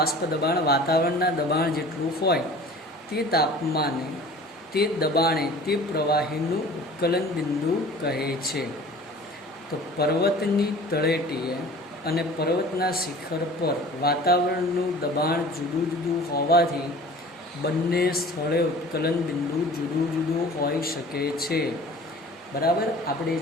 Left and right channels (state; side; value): normal; both; correlation 0.44